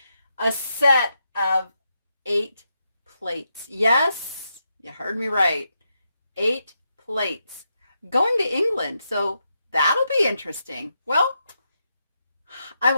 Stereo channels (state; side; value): inverted; both; correlation -0.83